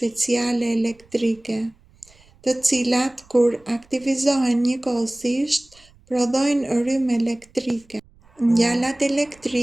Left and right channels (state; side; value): noise; right; rumble, 29 dB below the sound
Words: elektrike, të cilat kur aktivizohen njëkohësisht prodhojnë rrymë elektrike. Ngjalat